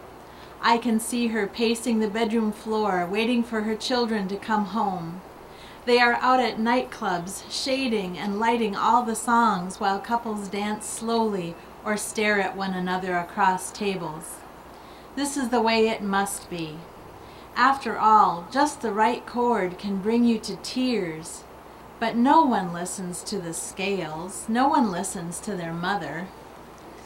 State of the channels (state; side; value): identical; both; correlation 1.00